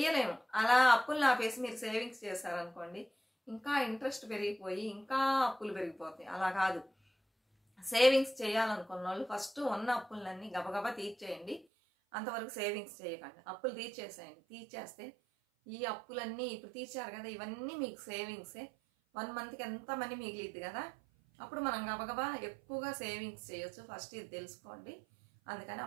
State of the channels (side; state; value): left; drops out; at 11.7 s